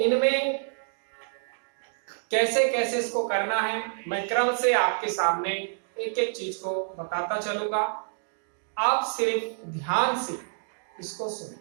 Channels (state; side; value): silent; left; digital silence